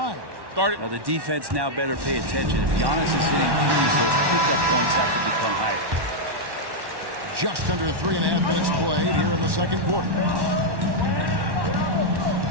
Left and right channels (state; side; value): late; left; 1.1 ms